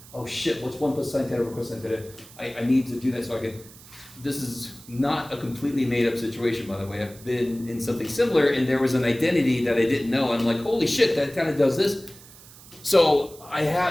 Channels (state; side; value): noise; right; hiss, 21 dB below the sound